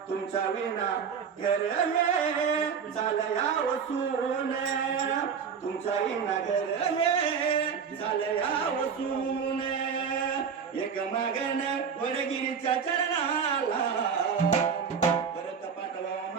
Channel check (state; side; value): quieter; left; 6.6 dB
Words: तुमच्या विना घर हे झालं या वसून तुमच्या विना घर हे झालं या वसून एक मागण वडगिरीच्या चरणाला परत पाठवा